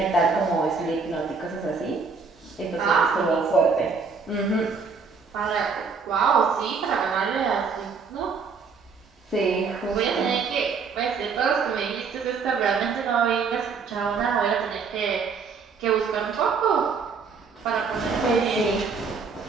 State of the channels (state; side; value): quieter; left; 5.2 dB